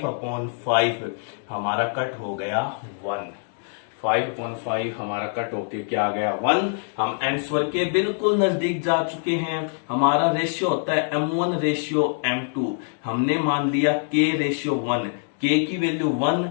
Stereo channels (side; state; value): right; silent; digital silence